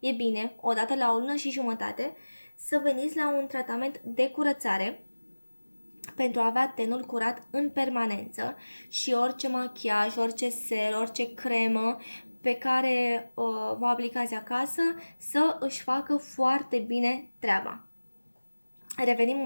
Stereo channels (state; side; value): inverted; both; correlation -1.00